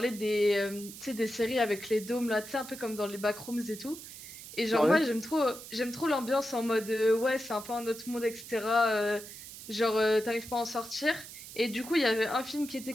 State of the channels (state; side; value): noise; right; hiss, 14 dB below the sound